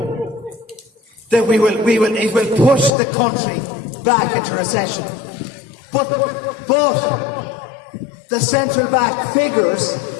That it will push the country back into recession. But the central bank figures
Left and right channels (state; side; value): drops out; right; at 2.9 s